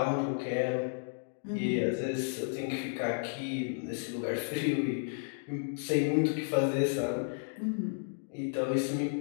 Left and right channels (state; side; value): silent; right; digital silence